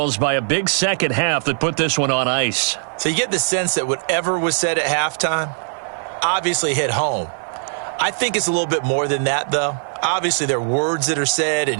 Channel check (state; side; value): silent; left; 57 dB below the other